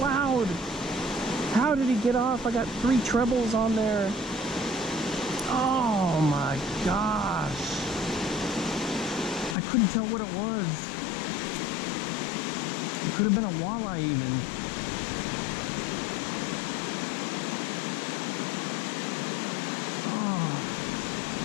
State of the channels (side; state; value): right; drops out; at 9.6 s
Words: How did he get off? I got 3 trebles on there. Oh my gosh. I couldn't tell what it was. It could have been a walleye even. Oh.